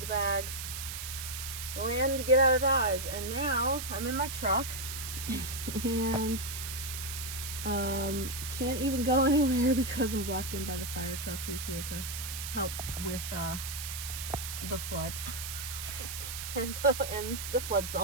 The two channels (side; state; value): right; noise; hiss, 6 dB below the sound